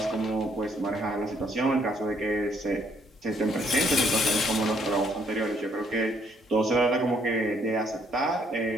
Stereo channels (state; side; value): normal; both; correlation 0.68